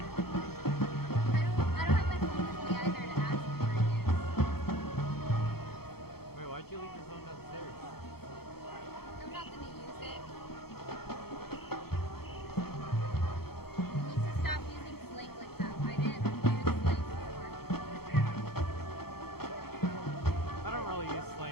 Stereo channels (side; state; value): right; late; 0.95 ms